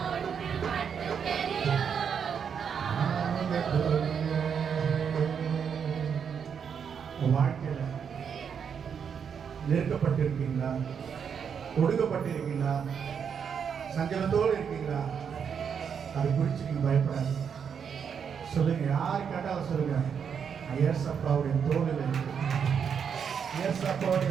வாழ்க்கையில நெருக்கப்பட்டிருக்கீங்களா? ஒடுக்கப்பட்டிருக்கீங்களா? சஞ்சலத்தோடு இருக்கீங்களா? அது குறித்து நீங்க பயப்படாது. சொல்லுங்க. யாரு கேட்டாலும் சொல்லுங்க. ஏசப்பாவுடைய தோளில் இருக்கு.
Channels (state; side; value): quieter; left; 7.2 dB